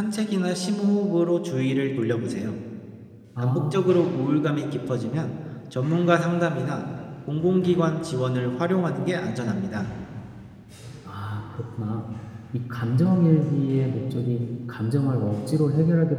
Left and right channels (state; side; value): identical; both; correlation 1.00